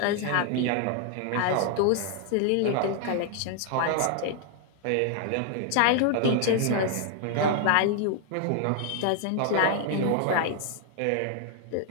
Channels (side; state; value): both; different; correlation 0.00